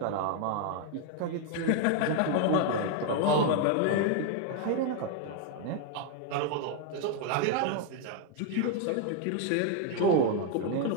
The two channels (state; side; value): different; both; correlation 0.00